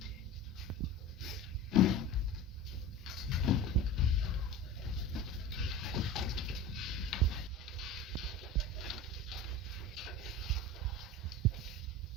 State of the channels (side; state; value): both; normal; correlation 0.32